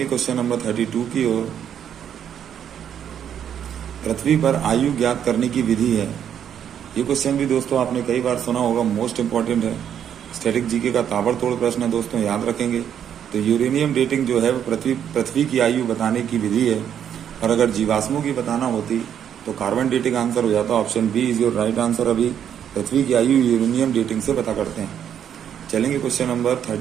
क्वेश्चन नंबर 32 की ओर। पृथ्वी पर आयु ज्ञात करने की विधि है। ये क्वेश्चन भी दोस्तों आपने कई बार सुना होगा, मोस्ट इंपॉर्टेंट है, स्टैटिक जीके का ताबड़तोड़ प्रश्न है दोस्तों, याद रखेंगे। तो यूरेनियम डेटिंग जो है वो पृथ्वी की आयु बताने की विधि है। और अगर जीवाश्मों की बताना होती तो कार्बन डेटिंग आंसर हो जाता। Option B is your right answer. अभी पृथ्वी की आयु यूरेनियम डेटिंग से पता करते हैं। चलेंगे क्वेश्चन नंबर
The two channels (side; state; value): left; quieter; 9.1 dB